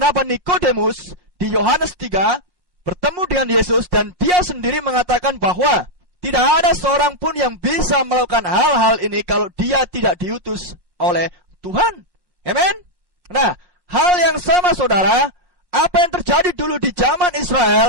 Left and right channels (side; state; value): left; late; 1.1 ms